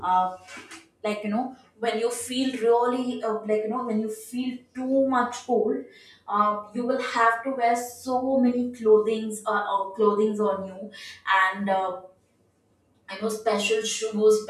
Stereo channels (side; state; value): both; identical; correlation 1.00